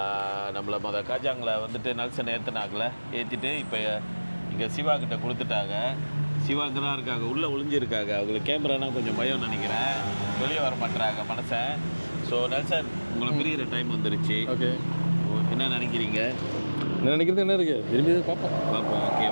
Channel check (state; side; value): inverted; both; correlation -1.00